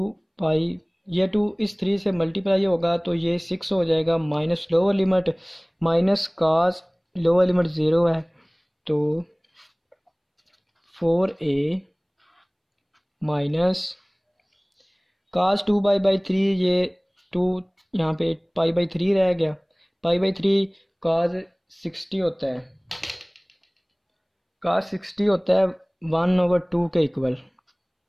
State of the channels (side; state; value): both; identical; correlation 1.00